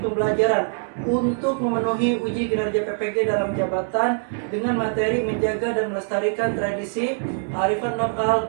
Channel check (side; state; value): left; silent; 62 dB below the other